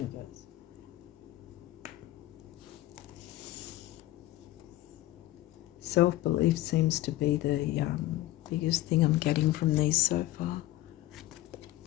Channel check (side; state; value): right; quieter; 16.2 dB